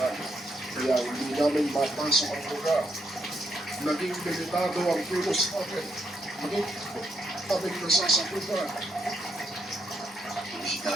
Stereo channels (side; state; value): both; normal; correlation 0.77